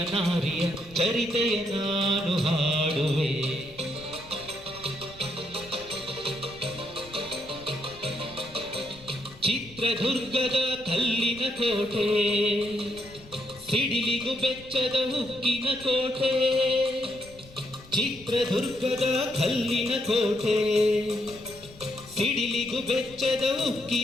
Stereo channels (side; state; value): left; noise; rumble, 21 dB below the sound